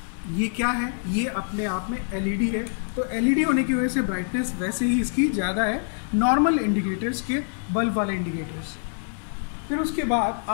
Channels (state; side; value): silent; right; 61 dB below the other